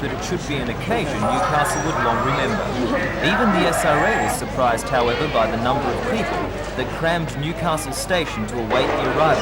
it should be an occasion Newcastle would long remember. Even the SRA was surprised, however, by the number of people that crammed Newcastle station to await the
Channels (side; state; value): both; identical; correlation 1.00